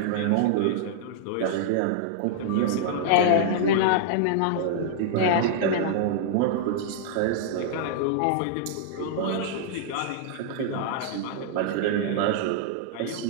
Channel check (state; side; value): different; both; correlation -0.01